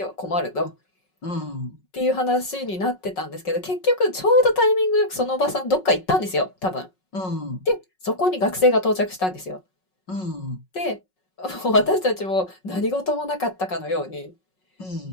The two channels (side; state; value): right; late; 5.4 ms